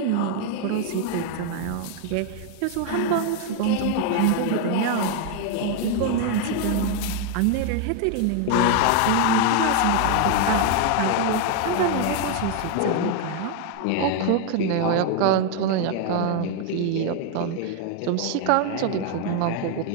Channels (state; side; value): different; both; correlation 0.01